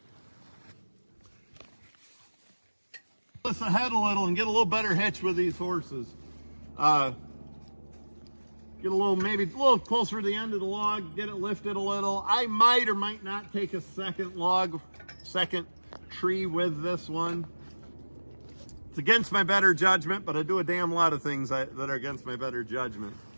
Let's ahead a little and get a little better hitch with these horses. Get a little, maybe a little closer to the end of the log, get it lifted a little. I might or might not take a second tree with this one. It's against my better judgment, but I do a damn lot of things that are against my better judgment.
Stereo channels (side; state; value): both; inverted; correlation -1.00